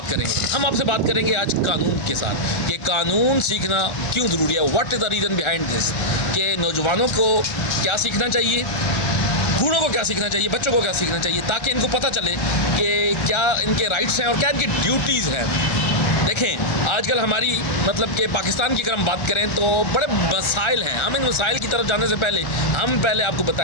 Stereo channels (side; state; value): right; late; 1.3 ms